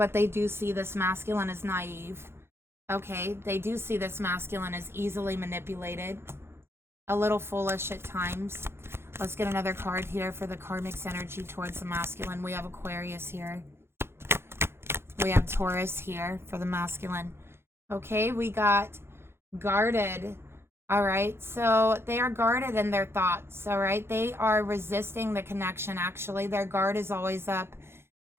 they do see this masculine as naive. Okay, they do see this masculine as easily manipulated, a little foolish at times. Let's get another card here for the karmic's energy towards the masculine. We have Aquarius here. We have Taurus here for the masculine. Okay, we got guarded. All right, so they are guarded in their thoughts. All right, they are resisting the connection. Actually, their guard is always up.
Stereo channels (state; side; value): late; left; 0.12 ms